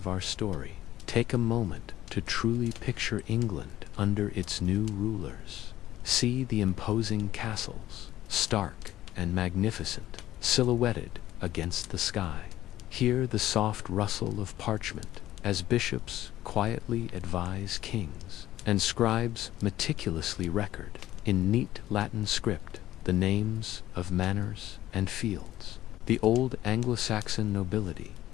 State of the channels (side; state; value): right; quieter; 14.0 dB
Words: our story, take a moment to truly picture England under its new rulers. See the imposing castles, stark and magnificent, silhouetted against the sky. Hear the soft rustle of parchment as bishops quietly advise kings, and scribes meticulously record, in neat Latin script, the names of manors and fields. The old Anglo-Saxon nobility,